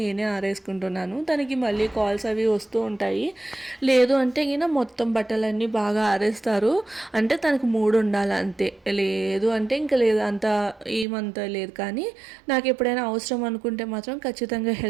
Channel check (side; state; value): left; drops out; at 11.1 s